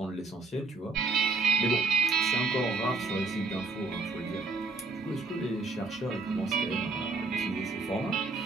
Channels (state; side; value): quieter; left; 3.8 dB